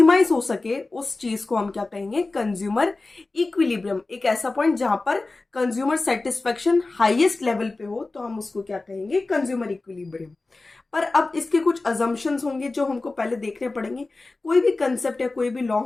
हो सके, उस चीज को हम क्या कहेंगे? Consumer equilibrium. एक ऐसा पॉइंट जहां पर कंज्यूमर सेटिस्फैक्शन हाईएस्ट लेवल पे हो, तो हम उसको क्या कहेंगे? Consumer equilibrium. पर अब इसके कुछ अजम्पशंस होंगे जो हमको पहले देखने पड़ेंगे। कोई भी कंसेप्ट या कोई भी लॉ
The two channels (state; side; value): quieter; right; 3.3 dB